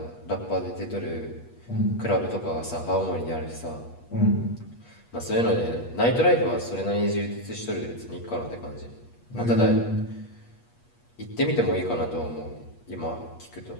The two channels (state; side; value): late; right; 8.4 ms